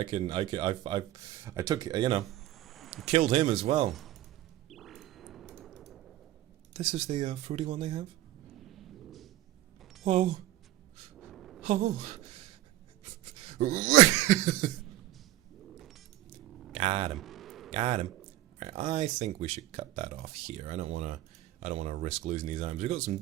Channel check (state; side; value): quieter; left; 15.1 dB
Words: took, you know, killed him as well. This is the fruity one they have? Whoa. Oh. Got him. Got him. Right, I think we should cut that off here. I don't wanna risk losing these items. We've got some